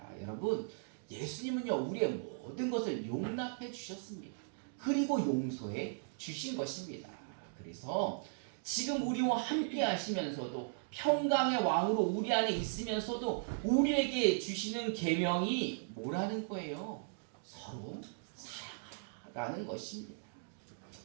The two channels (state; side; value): silent; left; digital silence